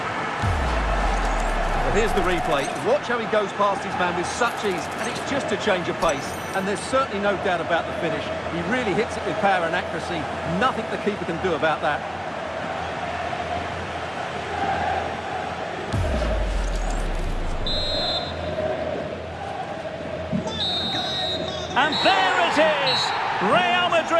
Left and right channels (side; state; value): both; identical; correlation 1.00